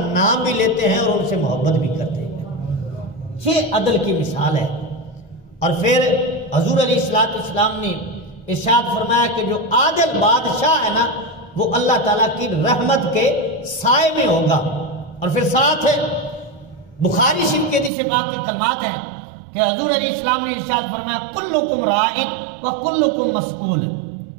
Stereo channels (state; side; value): drops out; left; at 17.9 s